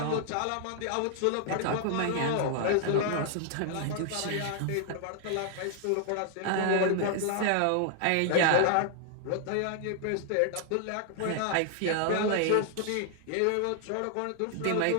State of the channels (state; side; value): different; both; correlation 0.00